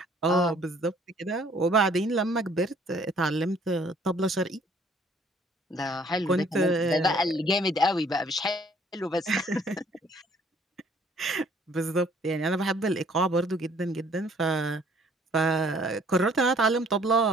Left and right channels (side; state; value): both; normal; correlation 0.59